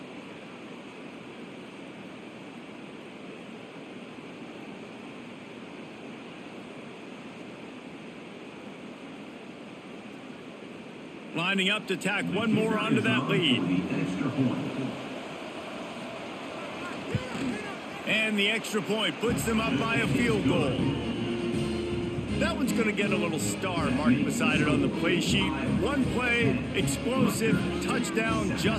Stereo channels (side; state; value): both; identical; correlation 1.00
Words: Lining up to tack one more onto that lead. And the extra point puts them up by a field goal. That one's going to get a little star marked beside it on the play sheet. One play, explosive, touchdown